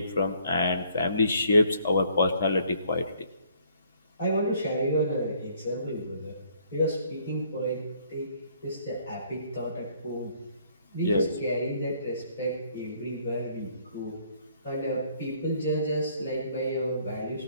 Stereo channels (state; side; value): inverted; both; correlation -0.63